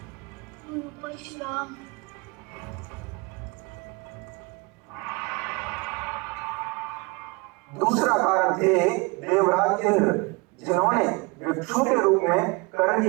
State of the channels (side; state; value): left; quieter; 27.0 dB